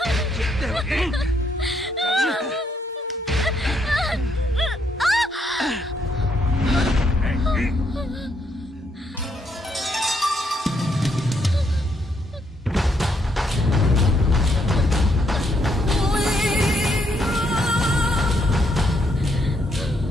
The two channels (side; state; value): both; normal; correlation 0.75